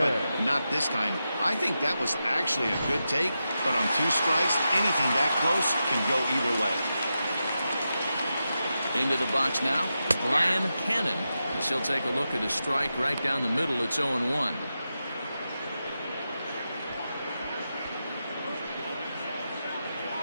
not this time. I think that was actually a good take, but on 2 strikes, anything that close can go either way. Into the box now, Brian Cannon. As he'll take a look at a strike right down the middle. It's 0-1.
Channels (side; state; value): both; inverted; correlation -0.89